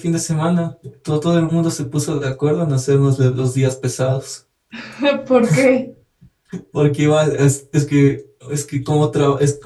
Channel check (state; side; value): identical; both; correlation 1.00